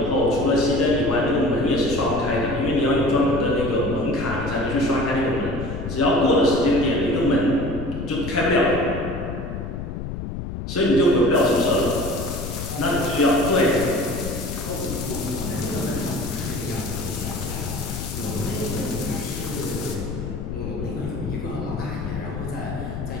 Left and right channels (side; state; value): left; noise; rumble, 6 dB below the sound